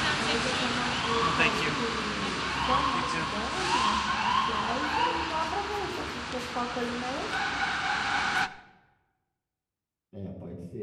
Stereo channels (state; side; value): identical; both; correlation 1.00